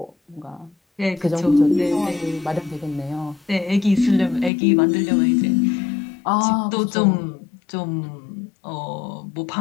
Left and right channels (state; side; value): drops out; right; at 4.5 s